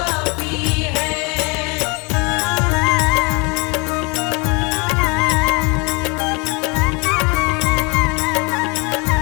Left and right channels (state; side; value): quieter; right; 29.8 dB